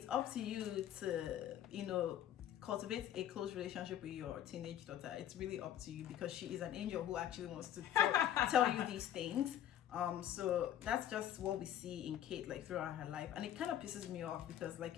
up to you to, you know, cultivate a close relationship with your teenage daughter. It's really up to you because she is an angel who actually wants to tell you these things. So that's just what we see in Kate like throughout her life, and it kind of pisses me off because, like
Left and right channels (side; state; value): right; quieter; 11.0 dB